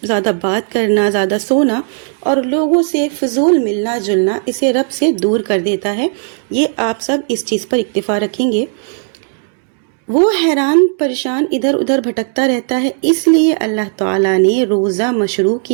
زیادہ بات کرنا، زیادہ سونا اور لوگوں سے فضول ملنا جلنا اسے رب سے دور کر دیتا ہے۔ یہ آپ سب اس چیز پر اکتفا رکھیں گے۔ وہ حیران پریشان ادھر ادھر بھٹکتا رہتا ہے، اس لیے اللہ تعالیٰ نے روزہ مشروع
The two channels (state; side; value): silent; left; 57 dB below the other